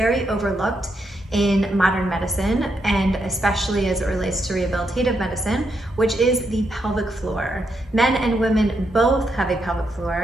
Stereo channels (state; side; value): normal; both; correlation 0.80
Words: overlooked in modern medicine, and especially as it relates to rehabilitative medicine, which is the pelvic floor. Men and women both have a pelvic